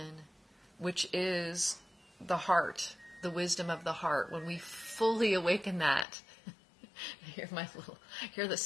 which is the heart, the wisdom of the heart, when we fully awaken that, hear the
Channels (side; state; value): right; drops out; at 6.1 s